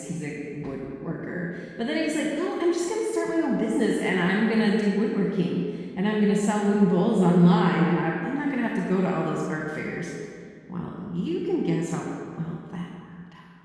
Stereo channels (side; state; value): both; identical; correlation 1.00